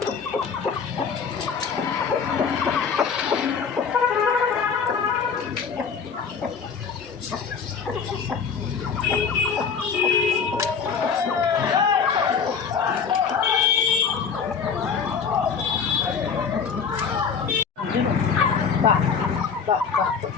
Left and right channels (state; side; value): quieter; right; 6.2 dB